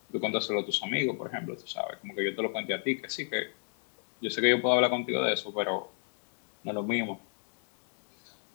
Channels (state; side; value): silent; right; 56 dB below the other